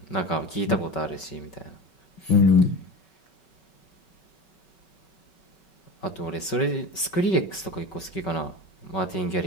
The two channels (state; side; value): late; right; 5.3 ms